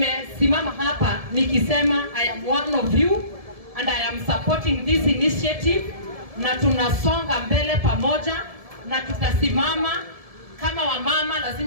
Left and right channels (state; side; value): late; left; 1.7 ms